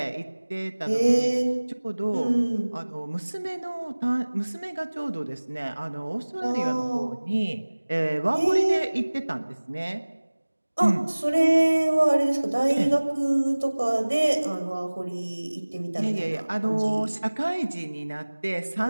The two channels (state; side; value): inverted; both; correlation -1.00